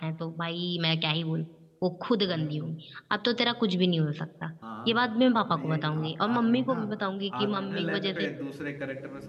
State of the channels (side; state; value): both; identical; correlation 1.00